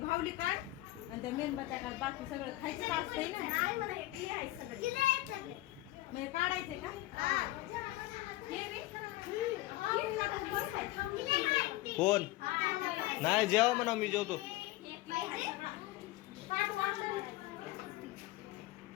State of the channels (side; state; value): right; quieter; 17.7 dB